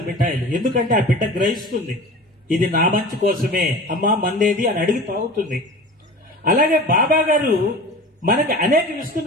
మిఠాయిలు, ఎందుకంటే ఆ బిడ్డ గ్రహిస్తుంది ఇది నా మంచి కోసమే, అమ్మా మందేది అని అడిగి తాగుతుంది. అలాగే బాబా గారు మనకి అనేక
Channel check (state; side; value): normal; both; correlation 0.36